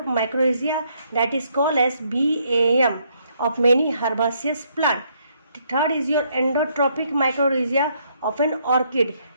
mycorrhiza, that is called as BAM, of many herbaceous plant. Third is your endotropic mycorrhiza of an orchid,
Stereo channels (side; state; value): both; inverted; correlation -0.71